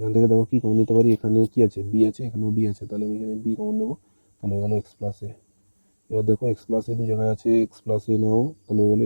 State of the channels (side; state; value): both; inverted; correlation -1.00